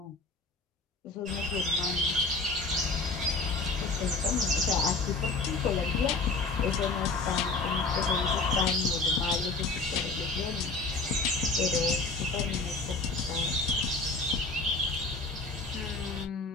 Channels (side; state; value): right; quieter; 3.7 dB